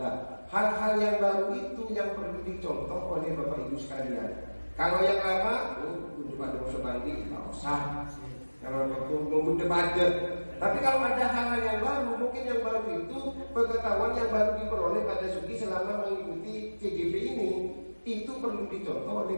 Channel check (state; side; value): inverted; both; correlation -1.00